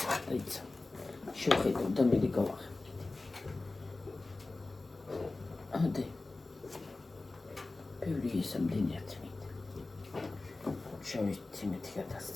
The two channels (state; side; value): quieter; right; 3.2 dB